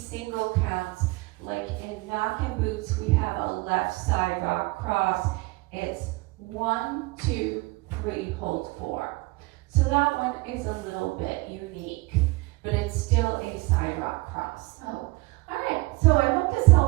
counts. Like in knockin' boots, we have a left side rock cross. It's 1, 2, 3, hold 4. So that one is a little bit unique, but it's still a side rock cross. So, all right, so I hope this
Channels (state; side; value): quieter; left; 23.5 dB